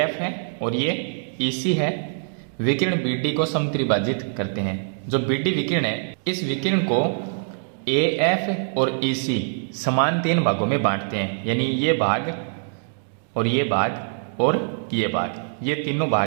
है और ये EC है, विकिरण BD को समत्रिभाजित करते हैं। जो BD विकिरण है, इस विकिरण को AF और EC समान 3 भागों में बांटते हैं, यानी ये भाग और ये भाग और ये भाग, ये तीनों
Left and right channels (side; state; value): left; silent; digital silence